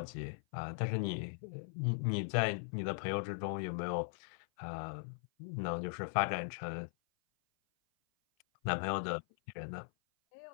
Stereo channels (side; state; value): right; silent; 52 dB below the other